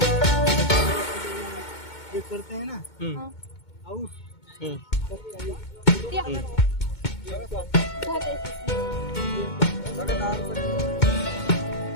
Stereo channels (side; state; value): right; late; 2.2 ms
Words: करते हैं ना आउ